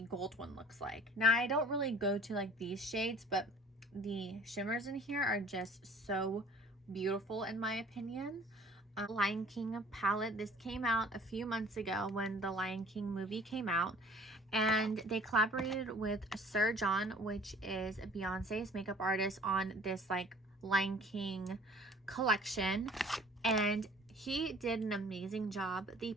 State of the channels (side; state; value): both; normal; correlation 0.51